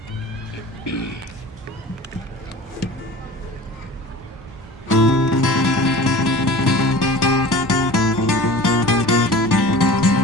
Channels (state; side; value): normal; both; correlation 0.39